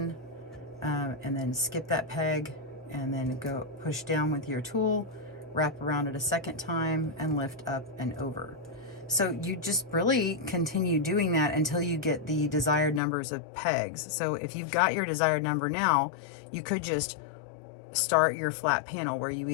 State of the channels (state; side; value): drops out; right; at 13.0 s